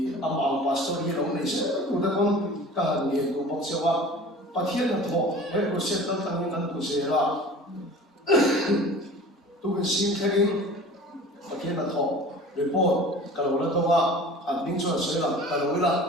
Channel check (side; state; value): both; normal; correlation 0.41